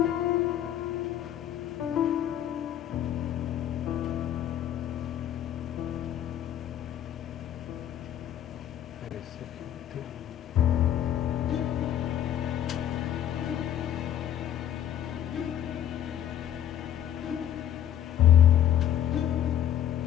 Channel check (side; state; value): right; quieter; 10.7 dB